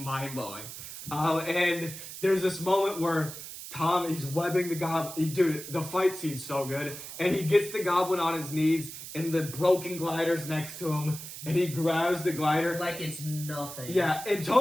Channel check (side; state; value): right; noise; hiss, 11 dB below the sound